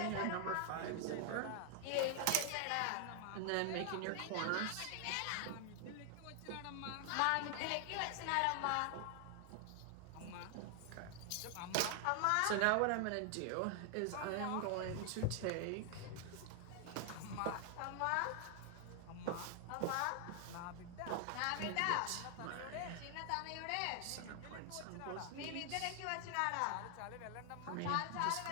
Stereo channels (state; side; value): different; both; correlation 0.00